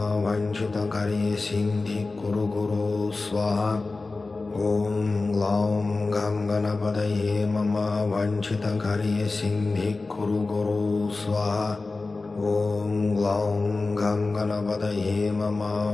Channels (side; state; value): right; quieter; 3.6 dB